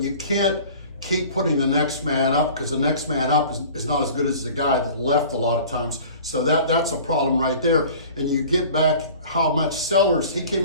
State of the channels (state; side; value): inverted; both; correlation -0.44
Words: you can't keep putting the next man up because the next man up is not as good as the guy that left a lot of times. So that's a problem right there. And you get back how much Sellers, he